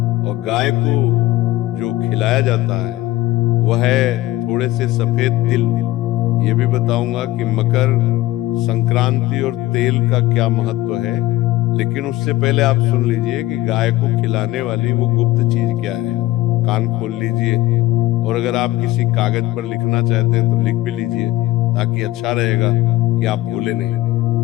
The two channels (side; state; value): right; quieter; 16.7 dB